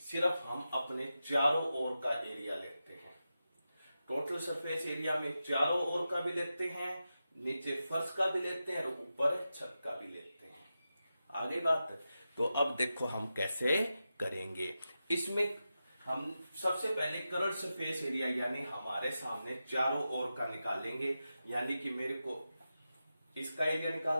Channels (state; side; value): inverted; both; correlation -0.91